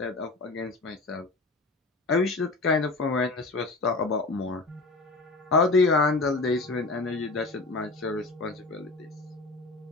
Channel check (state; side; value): quieter; right; 3.4 dB